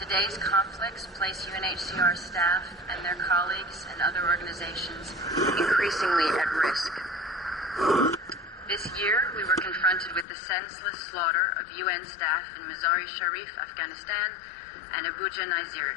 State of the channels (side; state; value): right; drops out; at 10.2 s